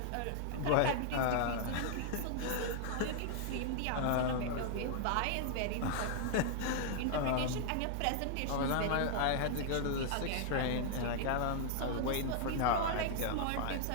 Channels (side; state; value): both; different; correlation 0.00